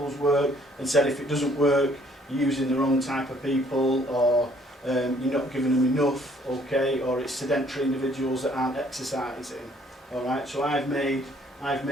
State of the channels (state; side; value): normal; both; correlation 0.62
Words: work and said if it doesn't work, you're using the wrong type of people, or you're not giving them enough, okay, or it's sedentary individuals that aren't exercising. Alright, so I've made